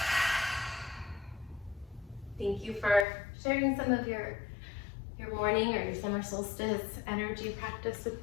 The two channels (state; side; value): drops out; right; at 3.1 s